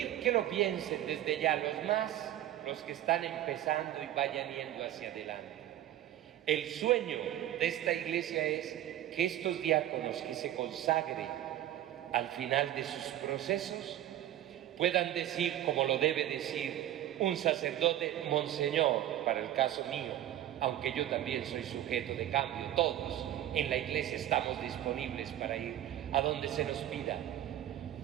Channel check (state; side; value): quieter; left; 12.6 dB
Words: que lo piensen desde ya, los que están empezando y vayan yendo hacia adelante. El sueño de esta iglesia es que estos diáconos que se consagren al final de sus procesos puedan decir, como lo debe decir un sacerdote, Monseñor, para el caso mío, aunque yo también soy sujeto de cambio, todos en la iglesia estamos disponibles para ir a donde se nos pida.